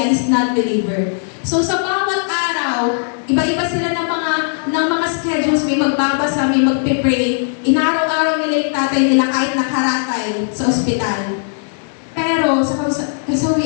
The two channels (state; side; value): silent; right; digital silence